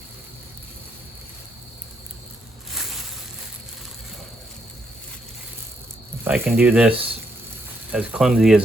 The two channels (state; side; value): normal; both; correlation 0.77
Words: I can do this as clumsy